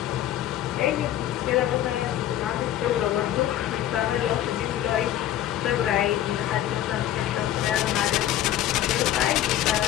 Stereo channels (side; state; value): right; quieter; 12.4 dB